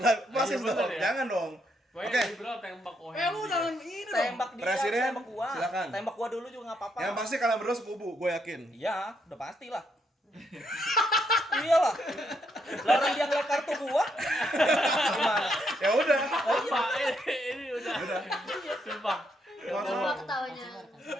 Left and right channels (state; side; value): normal; both; correlation 0.76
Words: fasis bener dong. ya. Jangan dong. Pokoknya Oke. liberal tembak Wendry. Lu jangan ini dong. Tembak dia, Presiden, tembak gua. silakan. Tembak gua dulu juga enggak apa-apa. Yang pasti kalian berdua sekubu, gue yakin. Iya, udah pasti lah. Iyalah. Lah orang dia ngeliat kartu gua. Gimana? Ya udah. Pak, ini udah. Sumpah. Coba ketawanya.